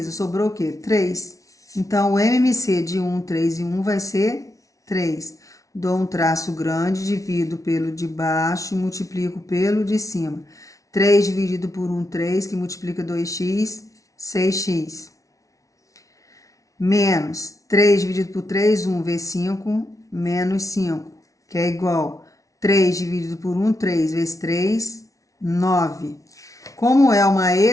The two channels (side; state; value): right; late; 0.16 ms